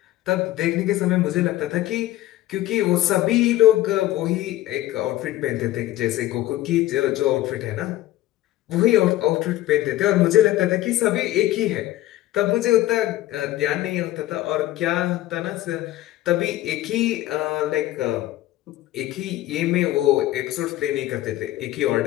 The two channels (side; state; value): right; quieter; 15.2 dB